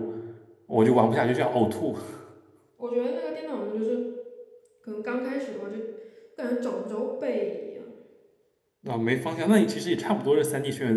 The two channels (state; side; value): identical; both; correlation 1.00